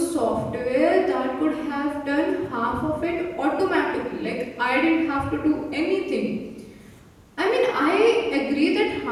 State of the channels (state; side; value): identical; both; correlation 1.00